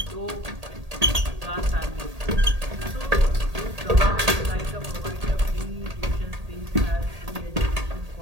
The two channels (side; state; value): left; late; 1.8 ms